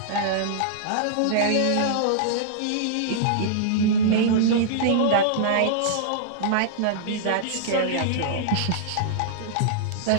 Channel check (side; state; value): both; different; correlation -0.02